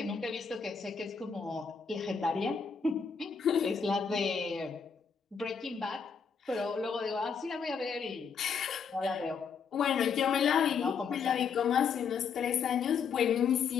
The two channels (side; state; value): right; quieter; 6.1 dB